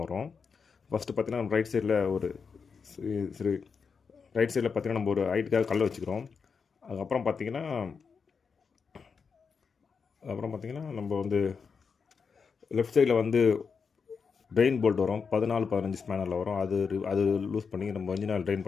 வரும். ஃபஸ்ட்டு பார்த்திங்கன்னா ரைட் சைடில் ஒரு சரி ரைட் சைடில் பார்த்திங்கன்னா நம்ம ஒரு ஹைட்டுக்காக கல்லை வச்சுக்கிறோம். அதுக்கப்புறம் பார்த்திங்கன்னா நம்ம வந்து லெஃப்ட் சைடில் வந்து ட்ரெயின் போல்ட் வரும் 14-15 ஸ்பேனரில் வரும். அது லூஸ் பண்ணி நம்ம இன்ஜின் ஆயில் ட்ரெயின்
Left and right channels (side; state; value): right; quieter; 5.7 dB